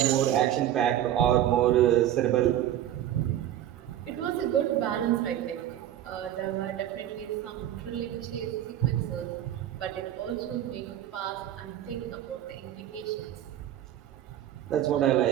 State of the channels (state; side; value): quieter; left; 11.9 dB